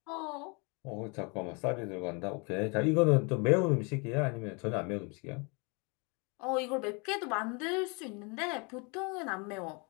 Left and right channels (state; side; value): quieter; right; 31.9 dB